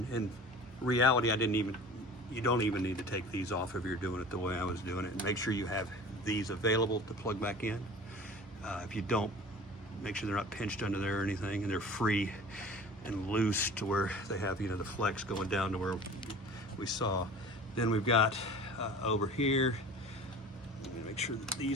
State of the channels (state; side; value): normal; both; correlation 0.41